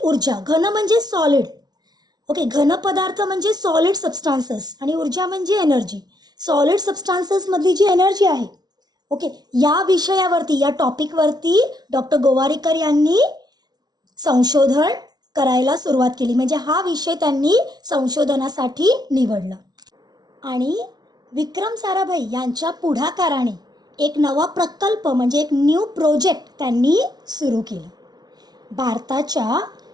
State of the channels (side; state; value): left; late; 0.19 ms